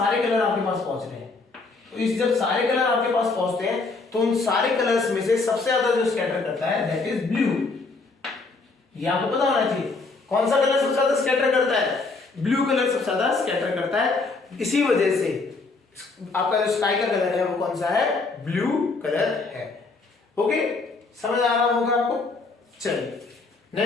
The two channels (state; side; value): quieter; right; 3.9 dB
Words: कलर आपके पास पहुंच रहे हैं। तो इस जब सारे कलर आपके पास पहुंचते हैं तो उन सारे कलर्स में से सबसे ज्यादा जो स्कैटर करता है दैट इज ब्लू। ये आपको पता होना चाहिए कौन सा कलर सबसे ज्यादा स्कैटर करता है, ब्लू कलर सबसे ज्यादा स्कैटर करता है। इसी वजह से आपका जो स्काई का कलर है वो कौन सा है, ब्लू कलर है। ओके, समझ आ रहा होगा आपको। चलिए